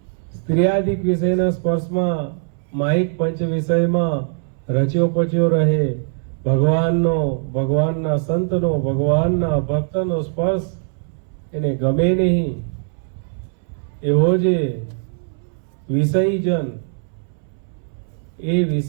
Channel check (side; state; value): left; silent; 63 dB below the other